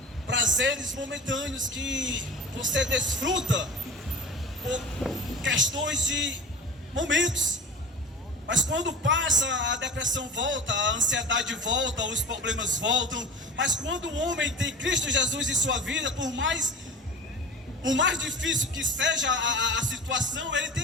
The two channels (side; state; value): both; normal; correlation 0.35